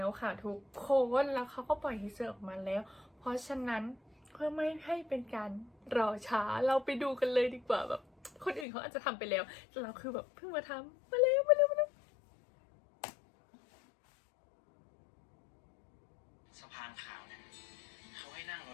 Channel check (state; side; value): drops out; right; at 8.7 s